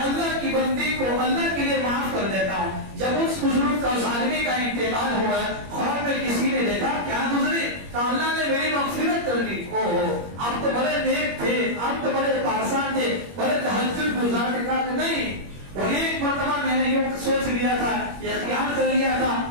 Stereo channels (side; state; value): left; late; 21 ms